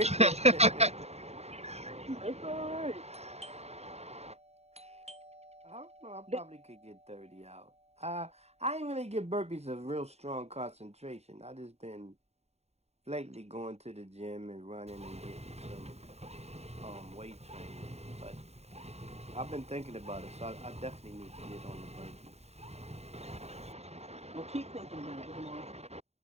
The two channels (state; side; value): late; left; 0.31 ms